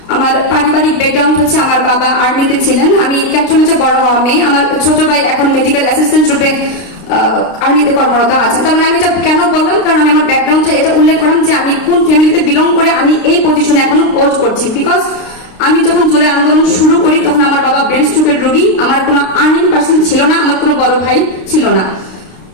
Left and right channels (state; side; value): late; right; 32 ms